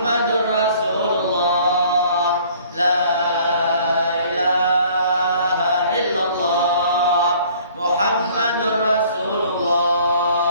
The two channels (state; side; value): inverted; both; correlation -0.55